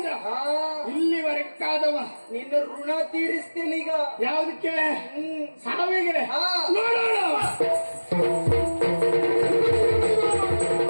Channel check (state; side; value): inverted; both; correlation -1.00